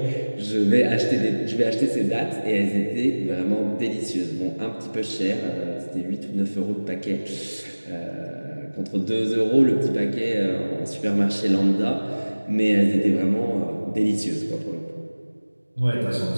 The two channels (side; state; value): both; inverted; correlation -1.00